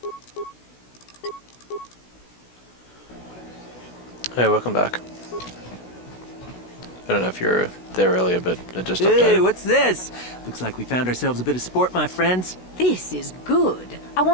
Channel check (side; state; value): right; late; 16 ms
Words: Hey, welcome back. I don't know if you were there earlier, but it just Hey, updated. what's this? Looks like we found ourselves a bit of sport, my friends. This is good. I